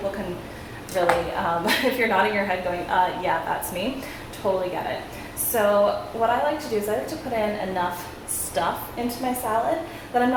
can really, if you're nodding your head going, yeah, that's me, totally get it. So what I like to do is I like to put in enough stuff into my salad that I'm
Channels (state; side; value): identical; both; correlation 1.00